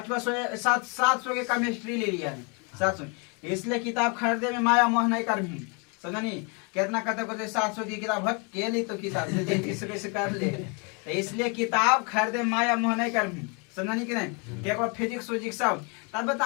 700 के केमिस्ट्री ले लिया है, 700। इसलिए किताब खरीदे में माया मोह नहीं कर भी, समझनी कितना कहते को 700 की किताब हट के ली तो किताब से कर ले। तो इसलिए किताब खरीदे माया मोह नहीं कर भी, समझनी कि नहीं। एक बार फिजिक्स विजिक्स सब तब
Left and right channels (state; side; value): quieter; right; 33.5 dB